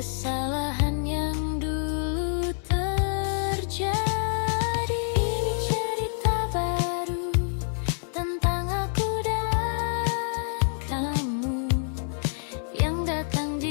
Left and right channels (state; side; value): silent; right; 60 dB below the other